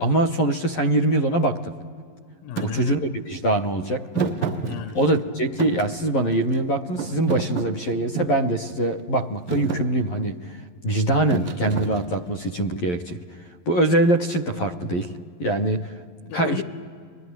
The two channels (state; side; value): late; right; 11 ms